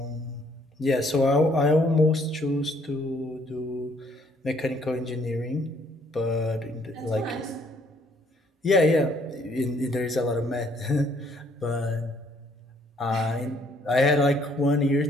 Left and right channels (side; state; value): both; normal; correlation 0.65